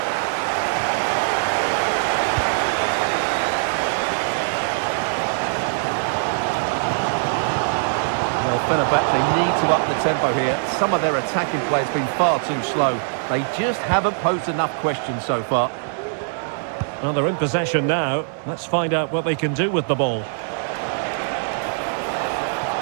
Well, Fenerbahce need to up the tempo here. Some of their attacking play has been far too slow. They just haven't posed enough questions so far. Well, they're in possession now. Let's find out what they can do with the ball.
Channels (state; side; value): silent; left; digital silence